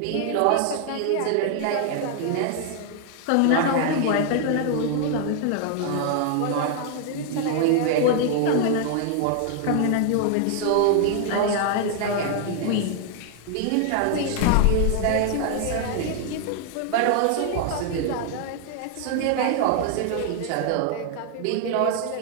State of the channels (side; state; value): both; different; correlation 0.00